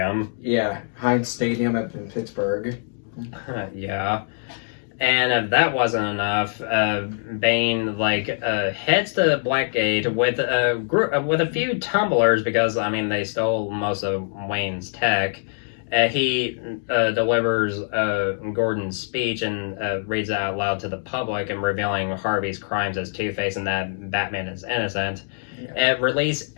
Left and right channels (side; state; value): right; silent; 63 dB below the other